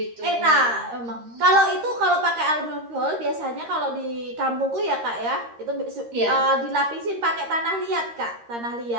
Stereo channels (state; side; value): late; left; 13 ms